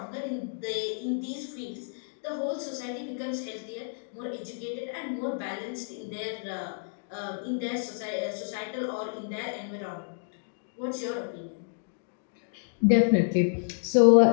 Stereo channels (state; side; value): silent; right; digital silence